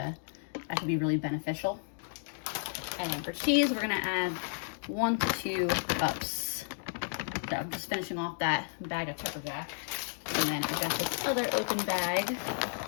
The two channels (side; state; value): right; silent; digital silence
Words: really beneficial. And then for cheese, we're gonna add 1 to 2 cups. So I'm just finishing off that bag of pepper jack. And then I got this other open bag.